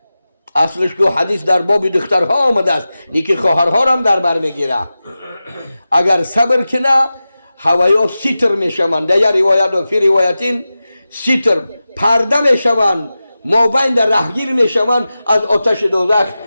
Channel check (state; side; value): inverted; both; correlation -0.94